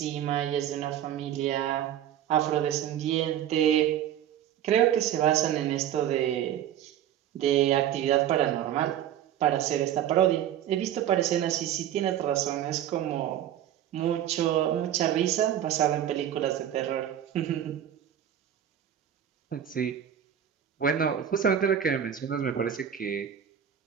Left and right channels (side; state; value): left; quieter; 10.5 dB